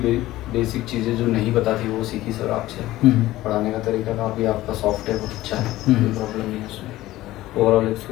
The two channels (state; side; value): quieter; right; 16.3 dB